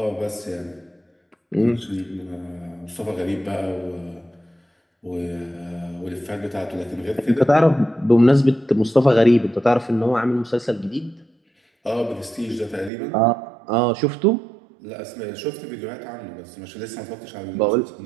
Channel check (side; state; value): left; drops out; at 12.9 s